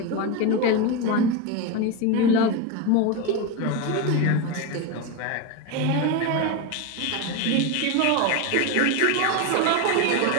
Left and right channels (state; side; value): different; both; correlation 0.04